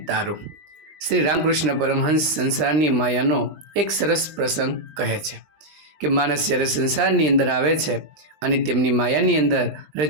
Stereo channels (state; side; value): late; left; 20 ms